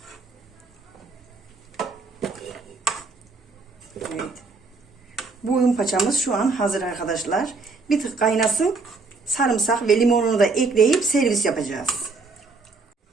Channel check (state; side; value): quieter; left; 4.0 dB